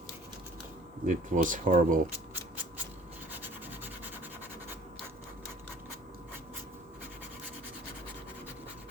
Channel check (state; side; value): normal; both; correlation 0.51